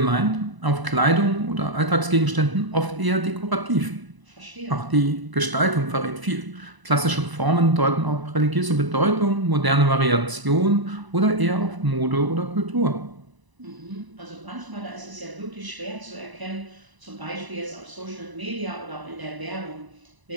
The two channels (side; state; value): left; late; 1.0 ms